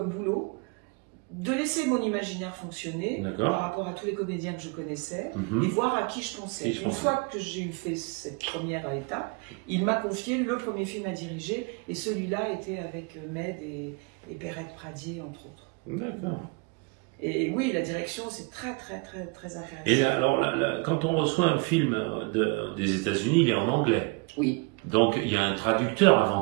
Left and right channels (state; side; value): quieter; left; 30.6 dB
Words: boulot de laisser mon imaginaire fonctionner par rapport à tous les comédiens que je connaissais et voir à qui je pensais. Une fois que j'ai fait cette première étape, il m'a confié le premier film à diriger et celui-là était avec Med et Perrette Pradier, entre autres. D'accord. Et oui, la direction, c'est très, très, très, très intéressant. Et là, alors, quand on reçoit un film des États-Unis, il est en anglais. Oui. Donc, il y a un traducteur